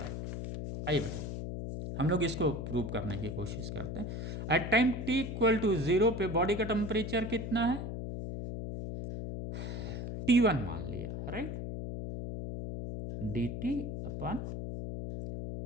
आइए बेटा हम लोग इसको प्रूव करने की कोशिश करते हैं। At time t equal to 0 पे बॉडी का टेम्परेचर कितना है? T1 मान लिया, राइट। dt अपन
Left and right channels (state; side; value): noise; left; hum, 5 dB below the sound